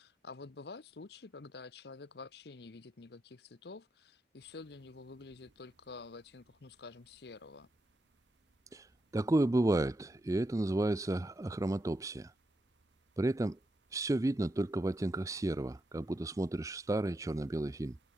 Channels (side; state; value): both; normal; correlation 0.85